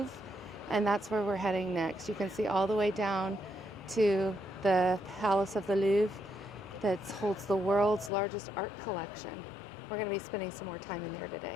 and that's where we're heading next. You can see all the way down to the Palace of the Louvre that holds the world's largest art collection. We're going to be spending some more time in there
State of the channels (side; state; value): right; drops out; at 8.1 s